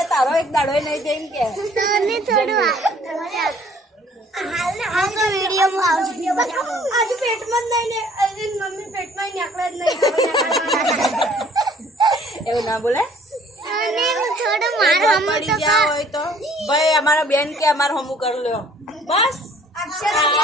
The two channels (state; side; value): normal; both; correlation 0.57